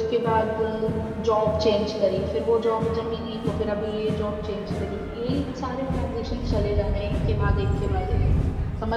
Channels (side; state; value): both; identical; correlation 1.00